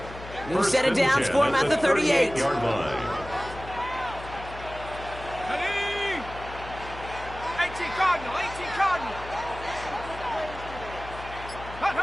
New set of downs for him at the 38.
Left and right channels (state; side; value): noise; left; hum, 13 dB below the sound